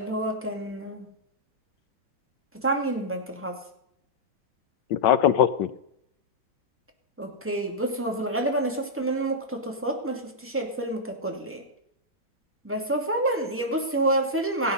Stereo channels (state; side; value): normal; both; correlation -0.09